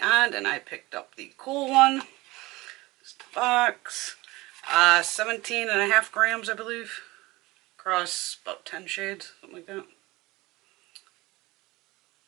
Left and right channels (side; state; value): left; quieter; 20.8 dB